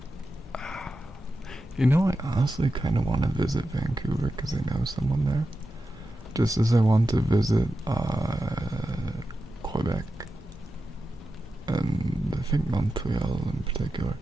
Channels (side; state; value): both; normal; correlation 0.91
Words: You know, I honestly kind of want to visit Vancouver because I know someone there. Just as I want to visit Quebec and I think Montreal in particular.